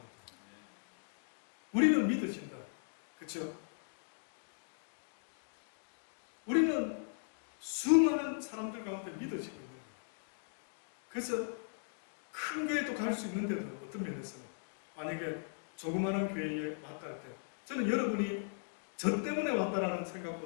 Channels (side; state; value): right; silent; digital silence